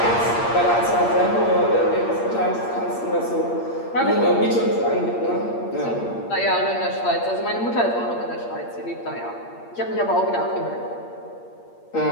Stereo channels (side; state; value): right; late; 8.6 ms